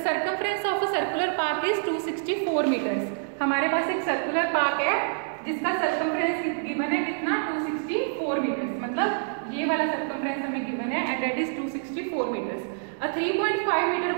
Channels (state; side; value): silent; left; digital silence